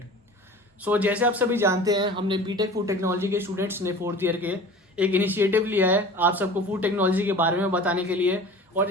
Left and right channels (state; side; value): normal; both; correlation 0.40